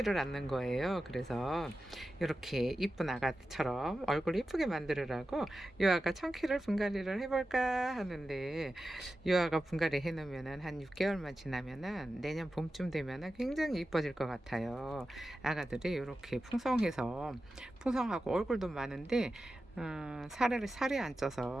않는 거예요. 그래서 이렇게 이쁜 아가처럼 얼굴 이쁘게 만들으라고 유아가 청키를 분갈이를 해볼까 하는데 유아가 분갈이 해놓으면은 한 6개월만 지나면은 내년 봄쯤 되면은 굉장히 이뻐질 것 같아요. 아가들이 이렇게 풍성하고 얼굴도 많은데 살이 안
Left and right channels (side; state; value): both; normal; correlation 0.93